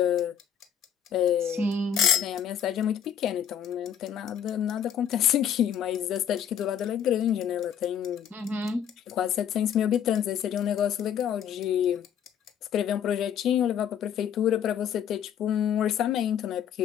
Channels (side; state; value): right; quieter; 8.9 dB